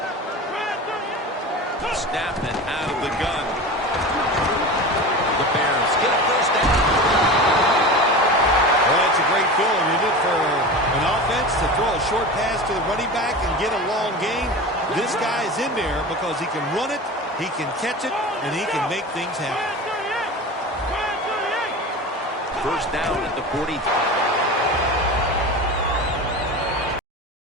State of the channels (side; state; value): both; normal; correlation 0.30